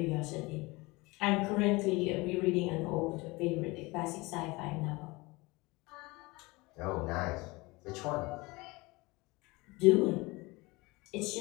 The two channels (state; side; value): quieter; right; 23.6 dB